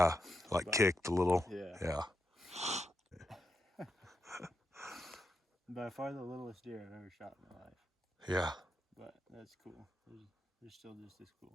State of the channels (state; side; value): normal; both; correlation 0.84